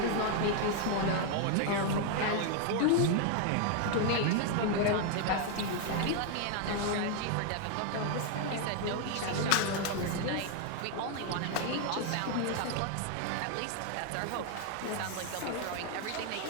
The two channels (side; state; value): both; different; correlation 0.00